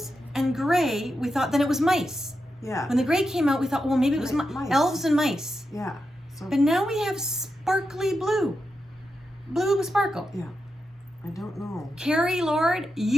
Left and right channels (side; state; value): both; normal; correlation 0.88